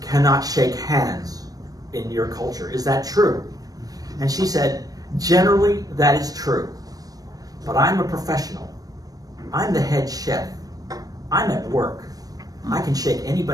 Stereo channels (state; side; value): late; left; 0.18 ms